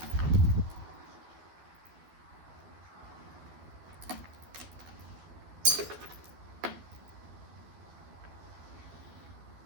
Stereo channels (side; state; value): left; late; 12 ms